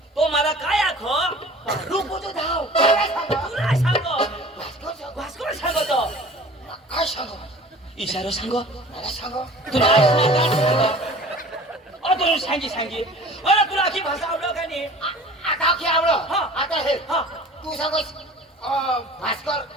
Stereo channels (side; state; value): both; normal; correlation 0.44